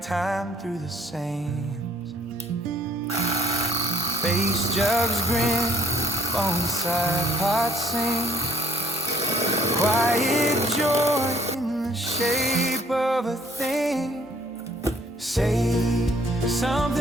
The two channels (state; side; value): normal; both; correlation 0.64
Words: time through the sands. Face jugs grin, bonsai pots sing, quiet joy in the shape of a thing. Say